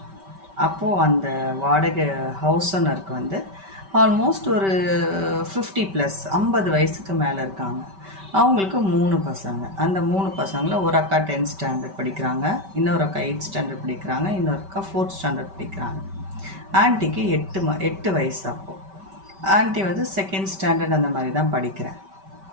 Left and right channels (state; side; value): late; left; 5.2 ms